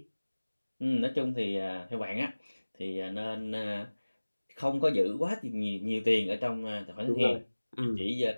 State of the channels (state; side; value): inverted; both; correlation -1.00